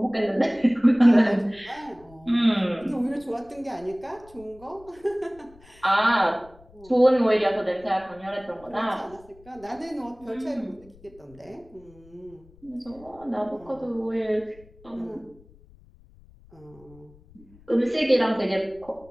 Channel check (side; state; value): left; noise; rumble, 25 dB below the sound